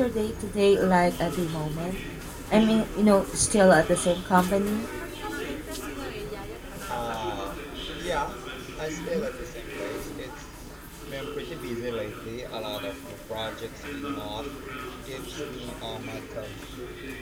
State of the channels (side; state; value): both; identical; correlation 1.00